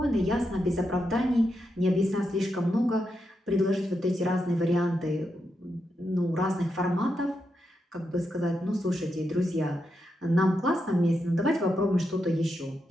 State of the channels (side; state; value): both; normal; correlation 0.84